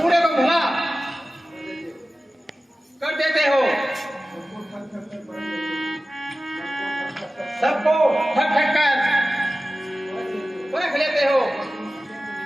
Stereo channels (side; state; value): both; normal; correlation 0.96